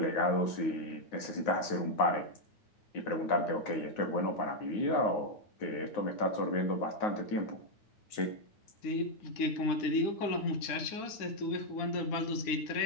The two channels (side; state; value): right; late; 9.5 ms